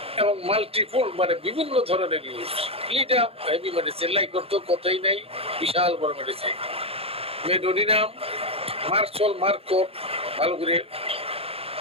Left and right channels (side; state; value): left; late; 0.28 ms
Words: এবং মাল্টিপুল মানে বিভিন্ন ধরনের use. Ledum heavy medicine, like করতে কথাই নাই, বিশাল বড় মেডিসিন। মেডোনিনাম, মার্চল, মার্কোট, ভালো করে।